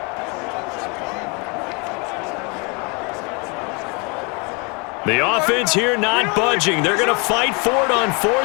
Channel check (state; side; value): quieter; right; 31.5 dB